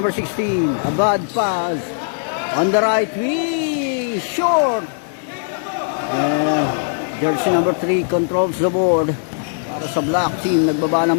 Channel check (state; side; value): silent; right; digital silence